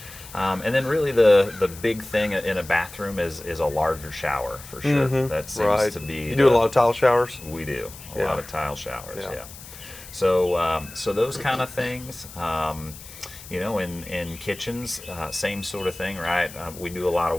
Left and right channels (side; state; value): left; noise; hiss, 16 dB below the sound